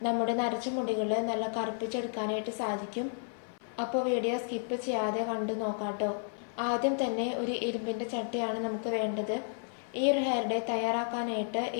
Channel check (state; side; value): silent; right; 56 dB below the other